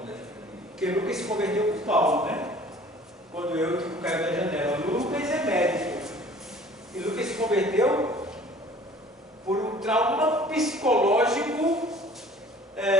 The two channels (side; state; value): both; normal; correlation 0.49